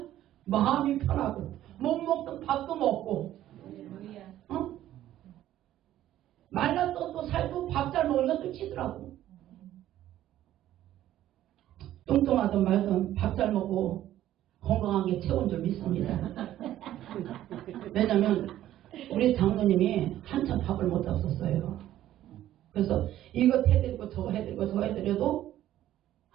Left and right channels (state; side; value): quieter; left; 13.0 dB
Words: 마음이 편하고 못 먹던 밥도 먹고, 어? 말랐던 또 살고 밥 잘 먹으면 또 찌더라고. 뚱뚱하든 말든 밥 잘 먹고 건강한 게 최고인 줄 믿습니다. 왜냐면 우리 장로님이 한참 밥을 못 잡섰어요. 그래서 이거 해드리고 저거 해드리고 저거 해드려도